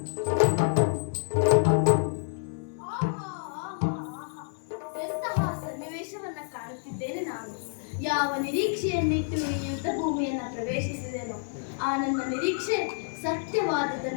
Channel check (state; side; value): silent; right; 59 dB below the other